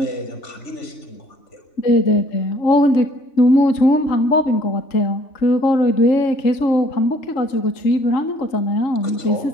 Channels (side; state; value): right; late; 3.5 ms